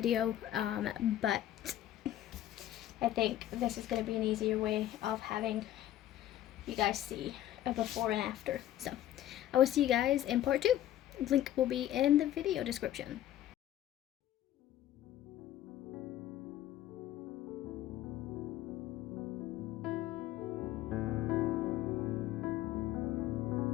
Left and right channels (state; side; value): quieter; right; 12.8 dB